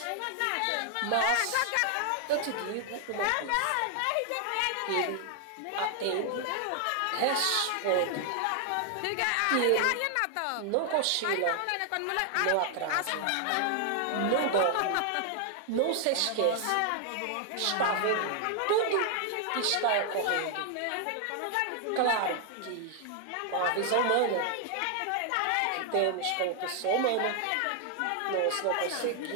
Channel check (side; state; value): both; different; correlation 0.00